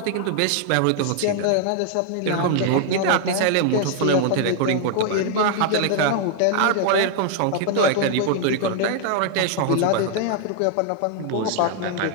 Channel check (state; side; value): different; both; correlation 0.00